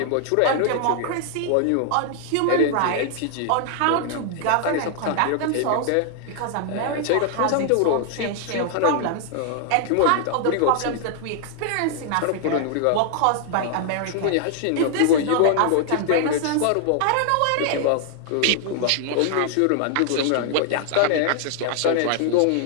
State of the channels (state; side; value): different; both; correlation 0.00